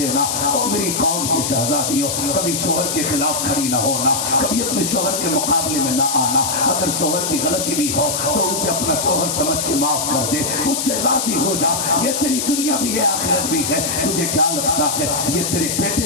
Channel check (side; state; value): left; noise; hiss, 1 dB below the sound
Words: اور میری قوم کی شہزادی ہو، کبھی شوہر کے خلاف کھڑی نہ ہونا، کبھی اپنے شوہر کے مقابلے میں نہ آنا، اگر شوہر کی غلطی بھی ہو تو اسے اپنا شوہر سمجھ کے معاف کر دے، اس سے راضی ہو جا۔ یہ تیری دنیا بھی ہے آخرت بھی ہے، تجھے کیا لگتا ہے یہ تیرے